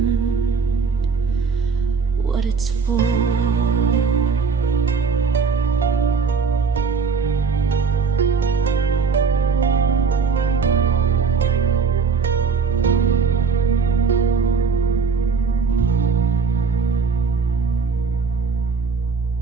what it's for.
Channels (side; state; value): left; quieter; 5.3 dB